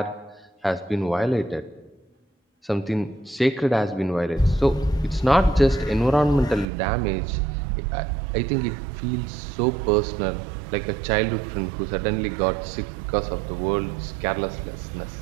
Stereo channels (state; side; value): drops out; left; at 6.7 s